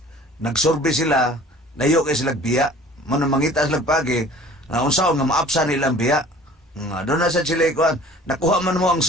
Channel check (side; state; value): both; normal; correlation 0.48